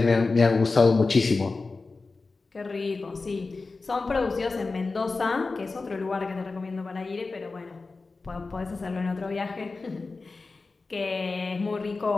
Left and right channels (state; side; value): quieter; right; 3.8 dB